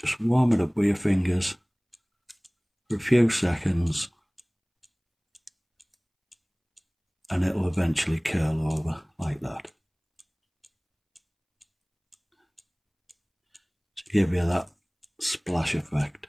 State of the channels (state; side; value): identical; both; correlation 1.00